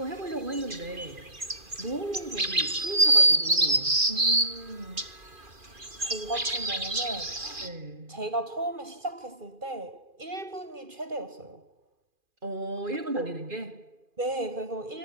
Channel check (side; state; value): left; late; 2.4 ms